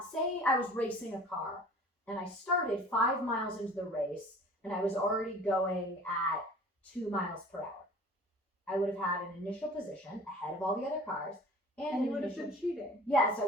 was racing a car and I started 5 miles into the race and I was already going at 2 miles per hour. I would have had an initial position ahead of all the other cars And you would have been cheating. Yes, I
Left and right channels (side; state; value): both; normal; correlation 0.45